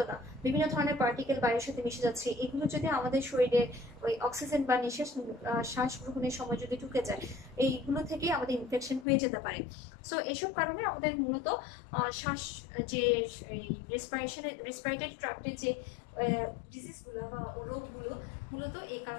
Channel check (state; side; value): drops out; right; at 9.1 s